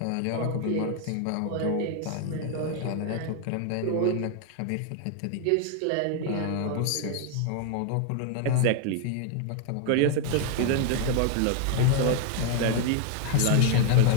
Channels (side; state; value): both; different; correlation 0.00